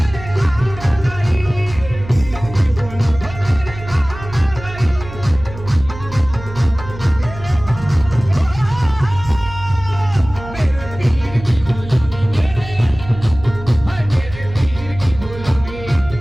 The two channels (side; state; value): right; noise; hum, 13 dB below the sound